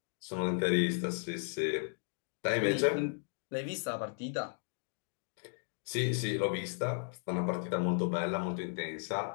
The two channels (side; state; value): right; silent; digital silence